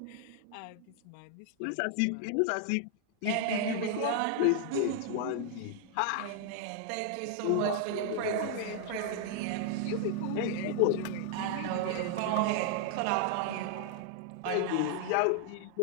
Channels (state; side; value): different; both; correlation 0.00